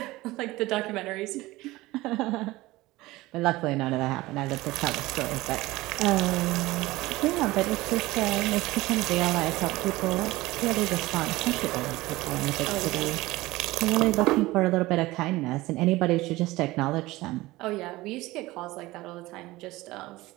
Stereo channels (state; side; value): quieter; left; 19.2 dB